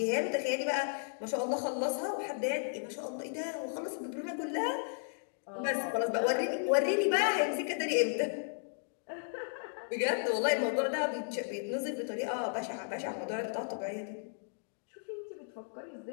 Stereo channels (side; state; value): right; silent; digital silence